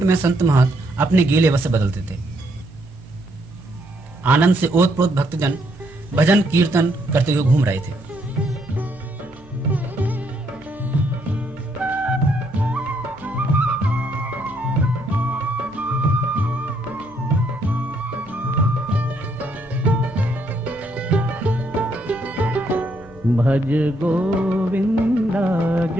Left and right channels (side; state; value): both; normal; correlation 0.73